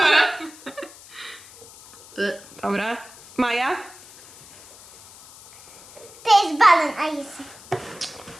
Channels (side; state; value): left; noise; hiss, 21 dB below the sound